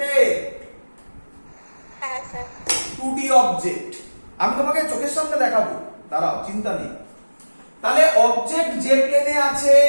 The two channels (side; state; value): both; inverted; correlation -1.00